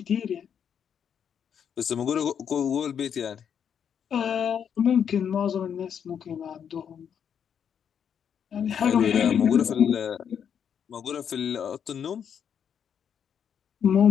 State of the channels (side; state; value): right; quieter; 8.0 dB